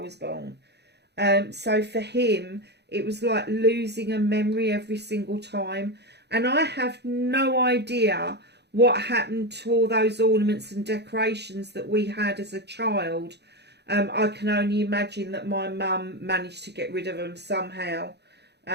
born. So for him, it was like losing a memory every single time. And I have no idea what happened to all those ornaments and decorations that we had as a child. I can only imagine that my mum managed to get rid of them somehow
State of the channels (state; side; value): late; left; 0.49 ms